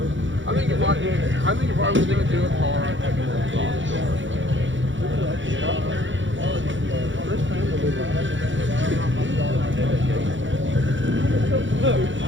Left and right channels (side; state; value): left; late; 0.55 ms